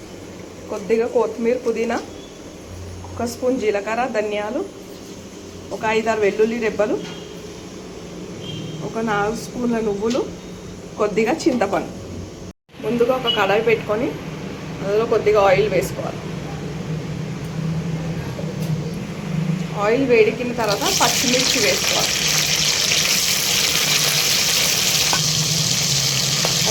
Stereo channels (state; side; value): identical; both; correlation 1.00